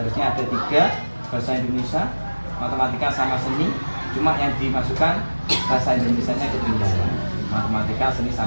ada 3, bahasa Indonesia, matematika sama seni, cuma yang dimasukkan bahasa Indonesianya ketinggalan. Matematika, seni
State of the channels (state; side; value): inverted; both; correlation -1.00